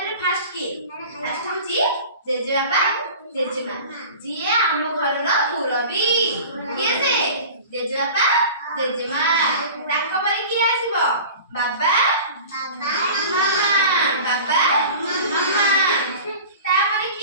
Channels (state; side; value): inverted; both; correlation -0.39